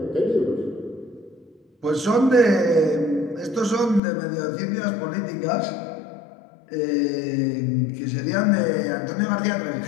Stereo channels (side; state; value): right; drops out; at 4.0 s